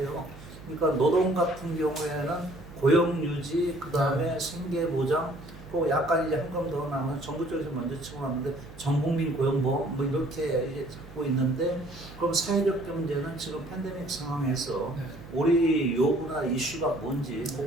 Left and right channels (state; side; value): noise; right; hum, 17 dB below the sound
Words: 그러니까 노동 같은 경우에는 고용 유지, 그 다음에 생계 보장, 또 약간 이제 한 건 더 나면 정부 쪽에서 먼저 치고 나는데 전국민 고용보험 뭐 이렇게 이제 잡고 있는데 그럼 사회적 경제는 지금 팬데믹 상황에서 우리 요구나 이슈가 뭔지